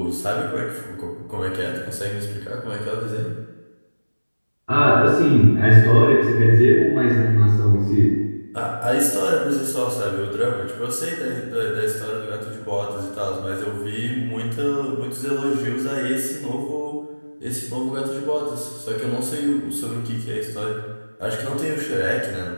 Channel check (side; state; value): both; inverted; correlation -1.00